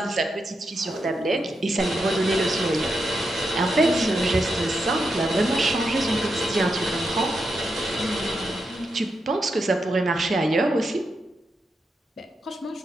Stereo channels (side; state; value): both; normal; correlation 0.85